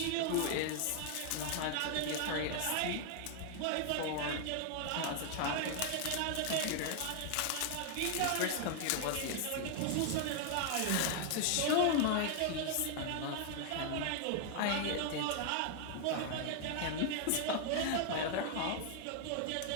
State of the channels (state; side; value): different; both; correlation 0.00